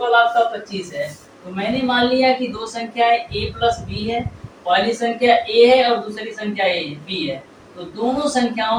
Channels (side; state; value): both; identical; correlation 1.00